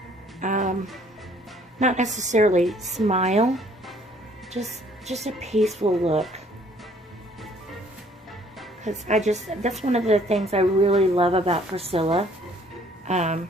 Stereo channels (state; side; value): normal; both; correlation 0.60